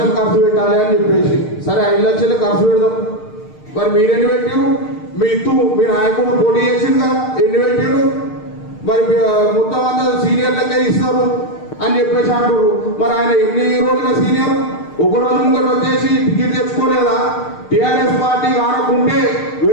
ఖర్చు పెట్టాలి అని చెప్పేసి. సరే, 5 లక్షలు ఖర్చు పెడదాం. మరి మీరెన్ని పెట్టారు? మీ నాయకుడు పోటీ చేసింది కదా, ఎన్ని పెట్టాడు? మరి మొత్తం అంతా సీనియర్లకే ఇస్తారు అని చెప్పేసి అంటారు. మరి ఆయన ఎన్ని రోజులుగా సీనియర్? 1 రోజు ముంగట వచ్చేసి టికెట్ తెచ్చుకోలేదా? టీఆర్ఎస్ పార్టీ ఆడకుంటే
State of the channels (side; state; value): right; late; 6.6 ms